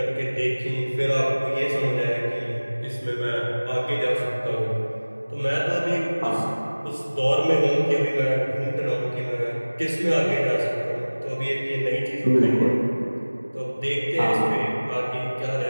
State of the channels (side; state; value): both; inverted; correlation -1.00